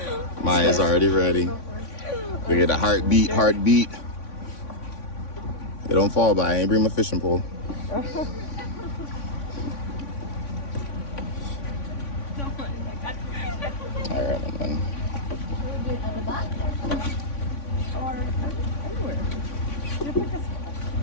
Maya's already ready. We get a heartbeat. They don't fall by. I ain't bring my fishing pole. All right, man.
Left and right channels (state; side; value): late; right; 3.5 ms